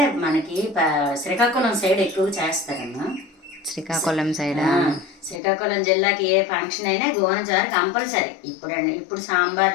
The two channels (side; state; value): right; drops out; at 5.4 s